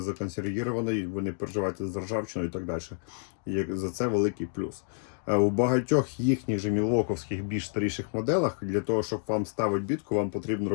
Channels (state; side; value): silent; right; digital silence